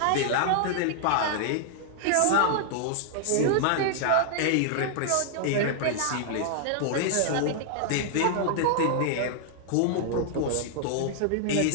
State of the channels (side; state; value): both; different; correlation -0.01